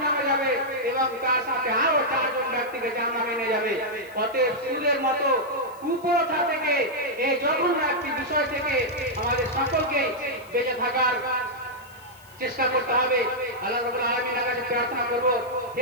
যাবে এবং তার সাথে আরো চারজন ব্যক্তিকে জাহান্নামে নিয়ে যাবে। অতএব সুদের মতো কুপ্রথা থেকে, এই জঘন্য একটি বিষয় থেকে আমাদের সকলকে বেঁচে থাকার চেষ্টা করতে হবে। আল্লাহ রাব্বুল আলামিনের কাছে প্রার্থনা করব,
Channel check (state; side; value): noise; left; hiss, 25 dB below the sound